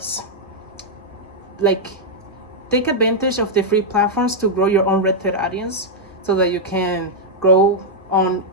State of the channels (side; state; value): both; normal; correlation -0.04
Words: take advantage of the free platforms to grow your own rented audience, so that you can grow on